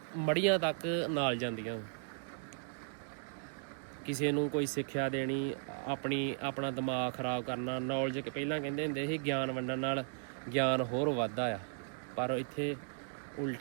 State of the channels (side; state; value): left; silent; digital silence